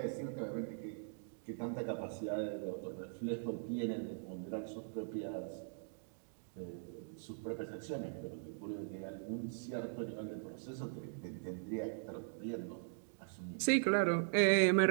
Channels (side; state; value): left; silent; digital silence